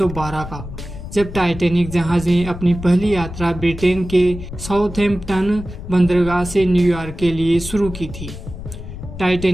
का, जब टाइटैनिक जहाज ने अपनी पहली यात्रा ब्रिटेन के साउथहैम्पटन बंदरगाह से न्यूयॉर्क के लिए शुरू की थी।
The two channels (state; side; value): noise; left; rumble, 11 dB below the sound